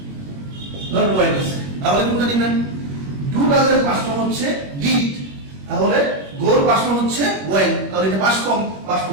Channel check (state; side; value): late; left; 21 ms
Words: নট ওয়েন্ট আছে, তাহলে কোনটা নেবেন? ডু ডাজ এর পাস্ট ফর্ম হচ্ছে ডিড, তাহলে গোর পাস্ট ফর্ম হচ্ছে ওয়েন্ট, তাহলে এটা পাস্ট ফর্ম, পাস্ট